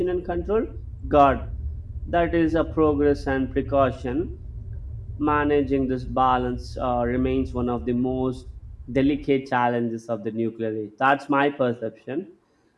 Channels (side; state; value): both; identical; correlation 1.00